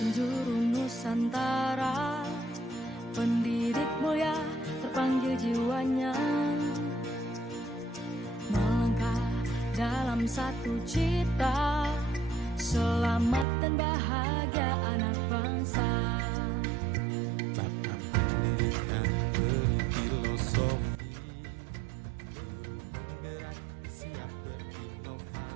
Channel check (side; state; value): left; drops out; at 13.5 s